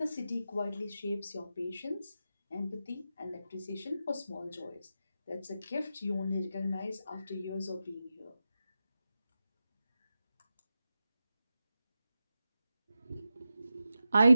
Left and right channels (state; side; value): inverted; both; correlation -0.91